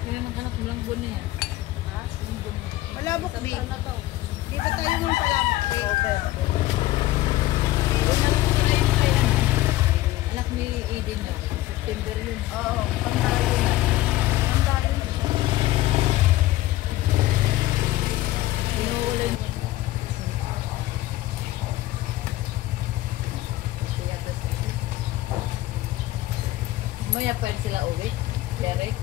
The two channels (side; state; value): right; quieter; 16.3 dB